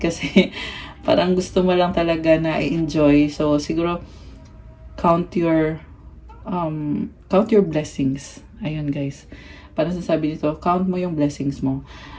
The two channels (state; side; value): identical; both; correlation 1.00